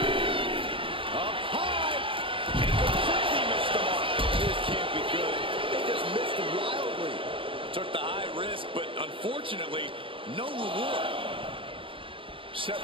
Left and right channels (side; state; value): left; late; 0.25 ms